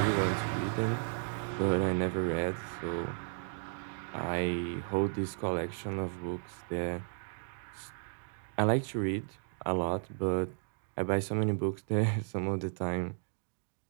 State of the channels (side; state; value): left; silent; digital silence